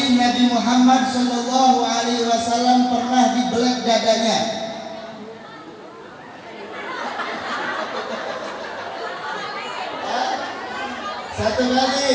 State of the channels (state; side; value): identical; both; correlation 1.00